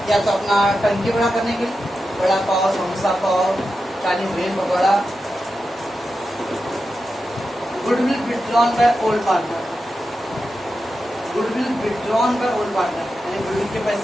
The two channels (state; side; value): normal; both; correlation 0.90